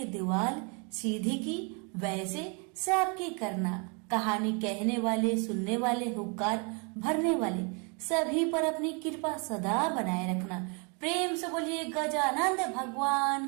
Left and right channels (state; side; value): quieter; left; 34.2 dB